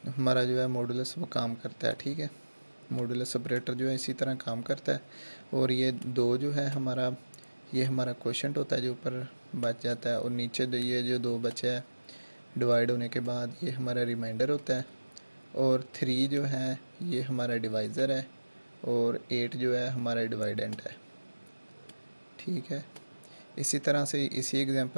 वो काम करता है। ठीक है, मॉडुलस ऑपरेटर जो है इसी तरह काम करता है। और ये 2 जो है हमारा, ये हमारा क्वोशंट होता है जो ऊपर बच जाता है और नीचे ये जो 2 बचा है डिवाइड होने के बाद ये हमारा रिमाइंडर होता है। और 3 जो है ये हमारा डिवाइज़र है और 8 जो है हमारा डिवाइडेंट है। ठीक है, इसी तरह से इसी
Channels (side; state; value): both; inverted; correlation -1.00